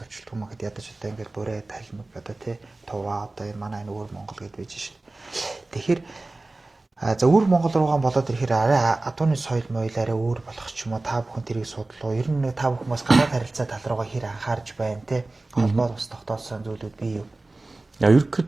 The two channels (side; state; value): left; quieter; 3.0 dB